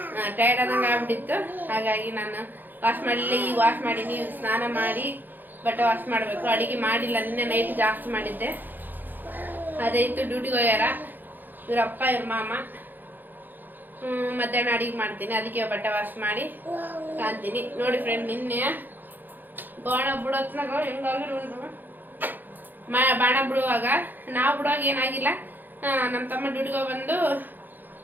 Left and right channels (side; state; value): left; late; 0.088 ms